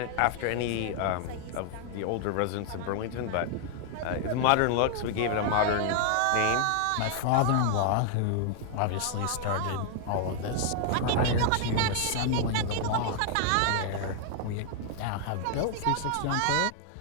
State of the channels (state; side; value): different; both; correlation 0.00